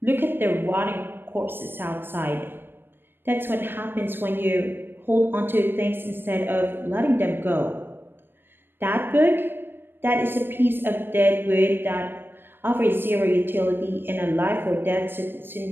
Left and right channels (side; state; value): left; late; 0.098 ms